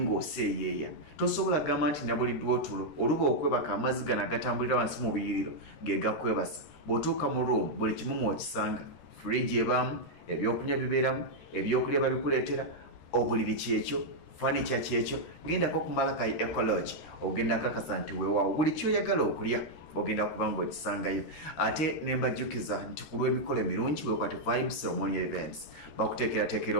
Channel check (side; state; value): right; late; 13 ms